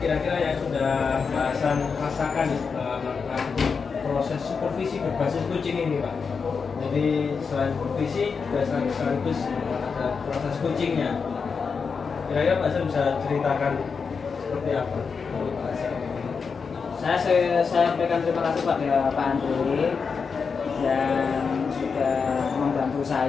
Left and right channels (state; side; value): quieter; right; 5.5 dB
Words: yang sudah Pak Hasan rasakan melakukan proses supervisi berbasis kucing ini Pak? Jadi selain supervisi juga sekaligus ada proses kucingnya. Kira-kira Pak Hasan bisa ceritakan seperti apa menurut Pak Hasan? Saya sampaikan terima kasih pada Pak Andre yang sudah membantu